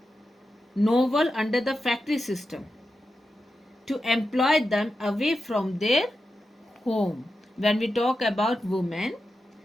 novel under the factory system to employ them away from their home. When we talk about women,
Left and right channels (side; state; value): both; normal; correlation 0.90